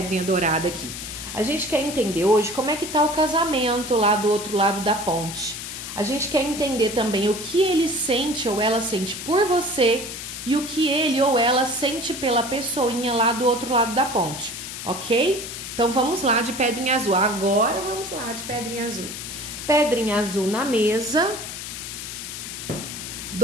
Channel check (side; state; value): left; noise; hiss, 8 dB below the sound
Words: dourada aqui. A gente quer entender hoje como é que tá o casamento lá do outro lado da ponte. A gente quer entender também o que ele sente ou ela sente por você e o que ele ou ela sente pela pessoinha lá do outro lado da ponte, ok? Então vamos lá de pedrinha azul. Agora vamos lá de pedrinha azul. Pedrinha azul na mesa.